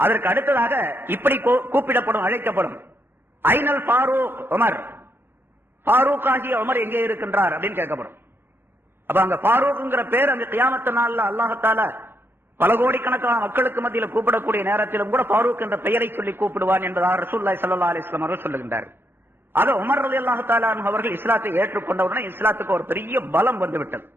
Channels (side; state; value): left; late; 0.10 ms